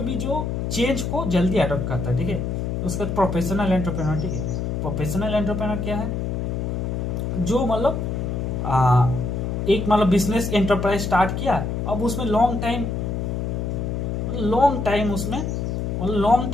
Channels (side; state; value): left; noise; hum, 2 dB below the sound